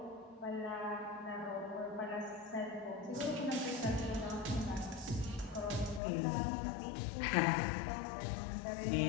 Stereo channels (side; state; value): right; drops out; at 6.0 s